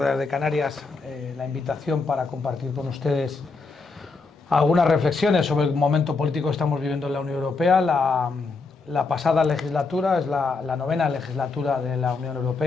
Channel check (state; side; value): quieter; right; 4.1 dB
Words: de Canarias la invitación para compartir con ustedes algunas reflexiones sobre el momento político que estamos viviendo en la Unión Europea. La pasada legislatura es la novena legislatura de la Unión